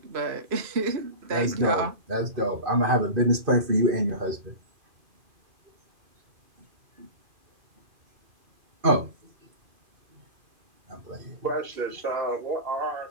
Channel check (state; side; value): late; left; 2.5 ms